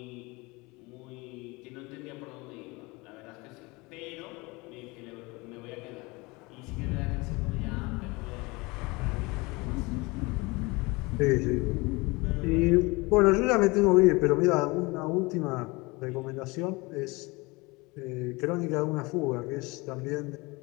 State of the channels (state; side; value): quieter; right; 24.7 dB